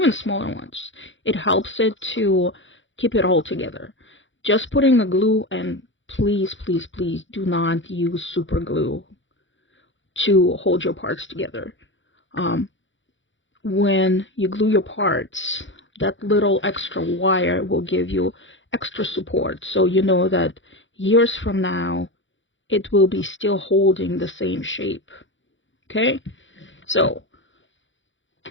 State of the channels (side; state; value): right; late; 0.55 ms